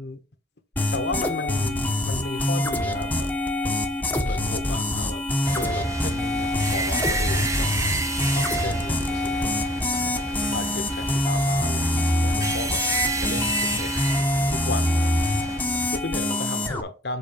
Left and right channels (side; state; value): both; normal; correlation 0.54